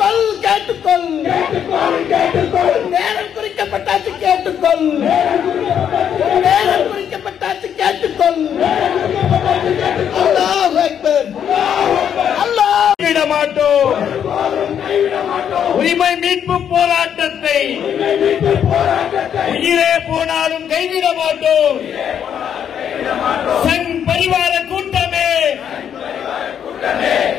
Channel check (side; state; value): right; quieter; 8.8 dB